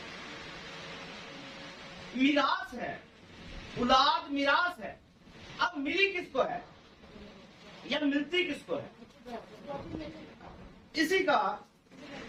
میراث ہے، اولاد میراث ہے۔ اب ملی کس کو ہے یا ملتی کس کو ہے؟ اسی کا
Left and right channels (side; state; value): both; identical; correlation 1.00